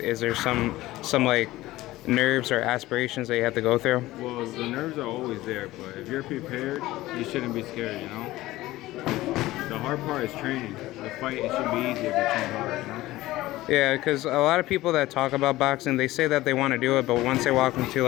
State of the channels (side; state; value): right; quieter; 17.2 dB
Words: there some nerves or aspirations that you have to go through? Well, the nerves are always there, but if you're prepared, you shouldn't be scared, you know? The hard part is training. The fight, it should be easier if you train hard, you know? Yeah, because a lot of people that talk about boxing, they say that they want to do it, but once they walk